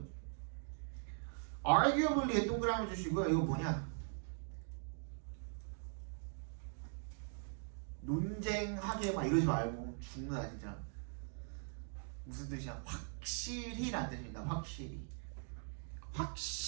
arguably에 동그라미 주시고요. 이거 뭐냐? 논쟁하게 막 이러지 말고 죽는다 진짜. 무슨 뜻이야? 확실히란 뜻입니다.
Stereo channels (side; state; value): left; silent; 50 dB below the other